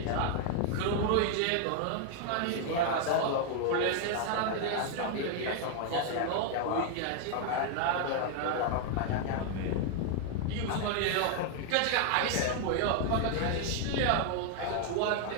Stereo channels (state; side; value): different; both; correlation 0.00